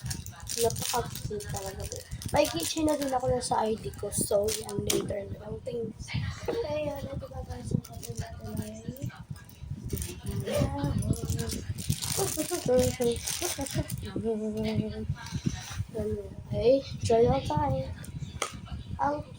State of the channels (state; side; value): identical; both; correlation 1.00